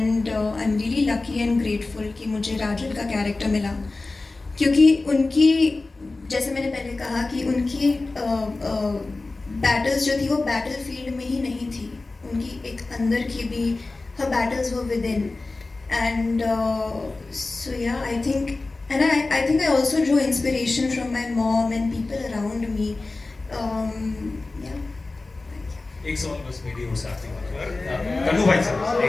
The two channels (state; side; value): quieter; right; 3.4 dB